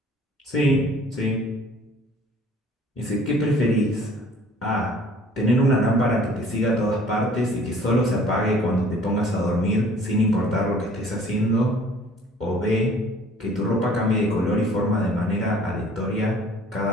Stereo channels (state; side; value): normal; both; correlation 0.53